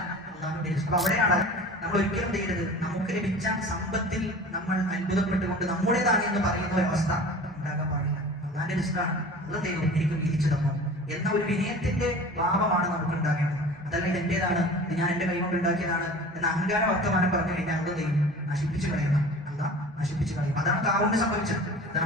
അല്ലാഹുവിന്റെ റിസ്ക്. അപ്പൊ അവിടെയാണ് നമ്മൾ ഒരിക്കലും ചെയ്യരുത് നമുക്ക് ലഭിച്ച സമ്പത്തിൽ നമ്മൾ അത്ഭുതപ്പെട്ടുകൊണ്ട് നമ്മുടേതാണ് എന്ന് പറയുന്ന ഒരു അവസ്ഥ ഉണ്ടാകാൻ പാടില്ല. അല്ലാഹുവിന്റെ റിസ്കാണ്, അത് ദൈവം എനിക്ക് വീതിച്ചു തന്നു എന്ന ഒരു വിനയത്തിന്റെ ഭാവമാണ് നമുക്ക് ഉണ്ടാകേണ്ടത്. അതല്ല ഇത് എന്റേതാണ്, ഇത് ഞാൻ എന്റെ കൈകൊണ്ട് ഉണ്ടാക്കിയതാണ് എന്ന അഹങ്കാര വർത്തമാനം പറഞ്ഞു കഴിഞ്ഞാൽ അത് ദൈവം നശിപ്പിച്ചു കളയുന്ന, അല്ലാഹ് നശിപ്പിച്ചു കളയും. അതാണ് കാറൂന് സംഭവിച്ചത്.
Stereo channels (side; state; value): both; normal; correlation 0.40